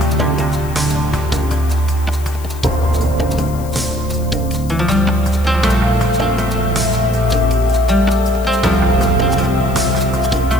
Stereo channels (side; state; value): left; noise; hiss, 19 dB below the sound